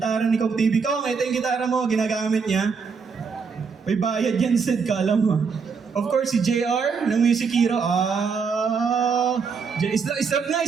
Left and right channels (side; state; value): left; quieter; 5.5 dB